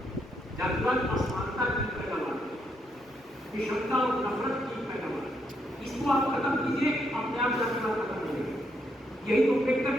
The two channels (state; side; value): normal; both; correlation 0.77